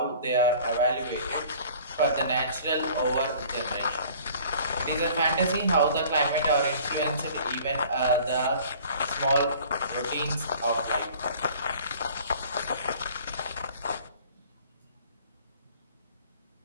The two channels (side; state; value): both; inverted; correlation -0.49